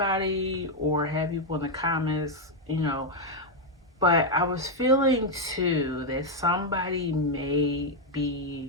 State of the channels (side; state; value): both; normal; correlation 0.01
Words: or have people in the comments, you know. But I was feeling too that somebody may